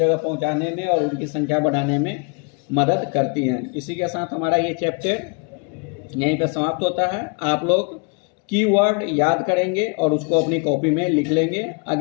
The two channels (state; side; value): quieter; right; 36.1 dB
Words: पहुंचाने में और उनकी संख्या बढ़ाने में मदद करती हैं। इसी के साथ हमारा ये चैप्टर यहीं पे समाप्त होता है। आप लोग कीवर्ड याद करेंगे और उसको अपनी कॉपी में लिख लेंगे।